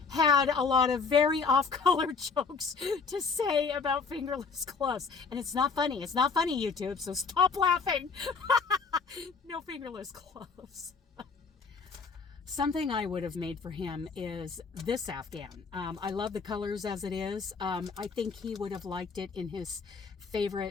had a lot of very off-color jokes to say about fingerless gloves. And it's not funny. It's not funny, YouTube, so stop laughing. No fingerless gloves. Something I would have made for him is this Afghan. I love the colors as it is. I think he would have liked it in his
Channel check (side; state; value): right; quieter; 5.1 dB